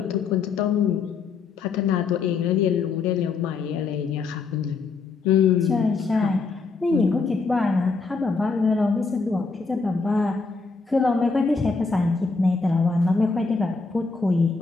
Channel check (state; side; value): quieter; right; 4.5 dB